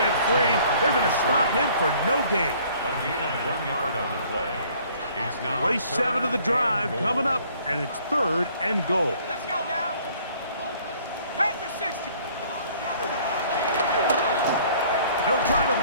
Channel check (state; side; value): inverted; both; correlation -0.57